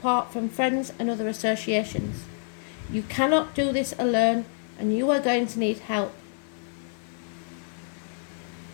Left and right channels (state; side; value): silent; right; 59 dB below the other